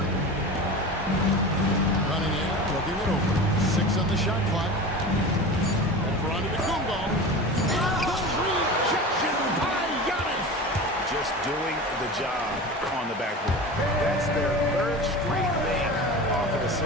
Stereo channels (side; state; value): both; normal; correlation 0.31